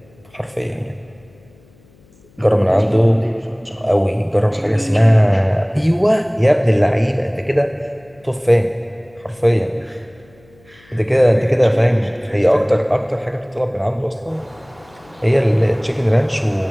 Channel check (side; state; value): left; noise; hum, 30 dB below the sound